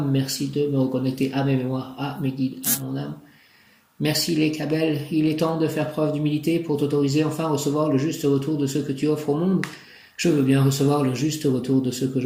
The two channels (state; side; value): identical; both; correlation 1.00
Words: Merci de me reconnecter à mes mémoires, à mes guides, à mon âme. Merci les Cabelles, il est temps de faire preuve d'humilité pour t'autoriser enfin à recevoir le juste retour de ce que tu offres au monde. Je veux bien recevoir le juste retour de ce que